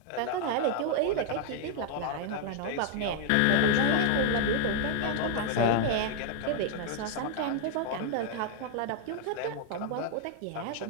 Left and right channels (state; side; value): different; both; correlation 0.00